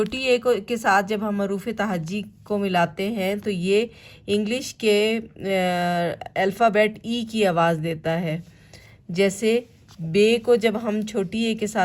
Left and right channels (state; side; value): identical; both; correlation 1.00